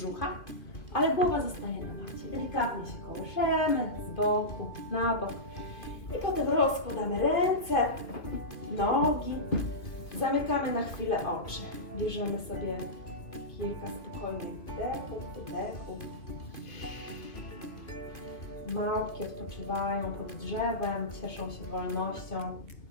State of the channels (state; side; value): late; right; 2.5 ms